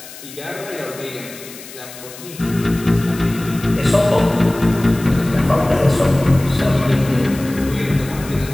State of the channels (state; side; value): noise; left; hiss, 16 dB below the sound